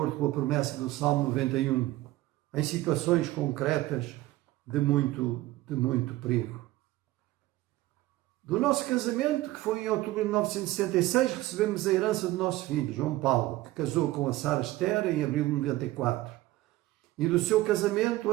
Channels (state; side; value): quieter; left; 17.2 dB